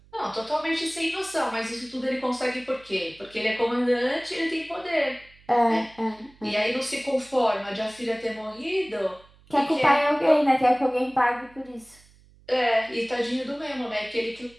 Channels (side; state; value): right; noise; hum, 28 dB below the sound